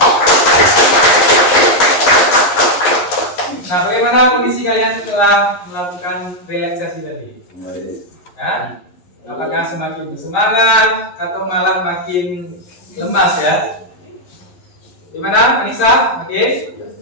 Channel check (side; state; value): right; late; 11 ms